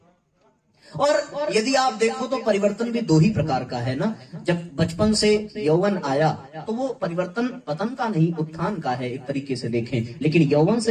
और यदि आप देखो तो परिवर्तन भी दो ही प्रकार का है ना। जब बचपन से यौवन आया तो वो परिवर्तन पतन का नहीं, उत्थान का है एक तरीके से देखें। लेकिन यौवन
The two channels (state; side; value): identical; both; correlation 1.00